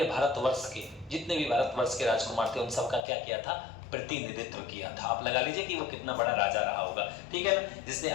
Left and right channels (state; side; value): drops out; right; at 3.1 s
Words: भारतवर्ष के जितने भी भारतवर्ष के राजकुमार थे उन सबका क्या किया था? प्रतिनिधित्व किया था। आप लगा लीजिए कि वो कितना बड़ा राजा रहा होगा, ठीक है ना, जिसने